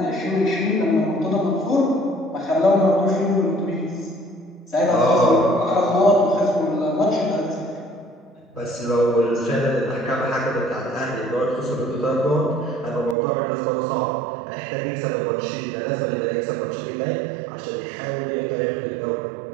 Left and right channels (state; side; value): drops out; left; at 13.2 s